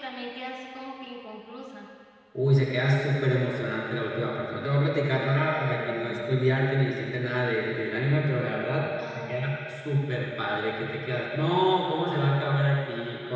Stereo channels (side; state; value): both; identical; correlation 1.00